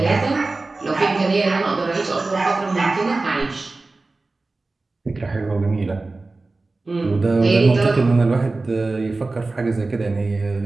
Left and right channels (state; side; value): quieter; left; 3.4 dB